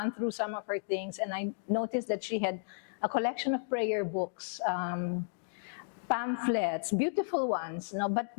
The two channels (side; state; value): right; silent; digital silence